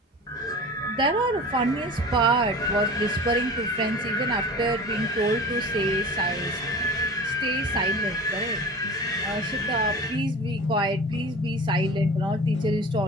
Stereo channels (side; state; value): both; normal; correlation 0.38